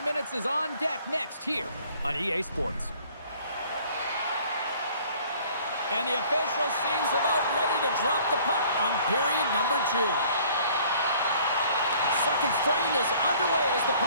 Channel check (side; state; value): both; inverted; correlation -0.55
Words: minutes is on deck next here on EA Sports. And the official seems about ready to drop the puck on period number 2. Second frame is underway as the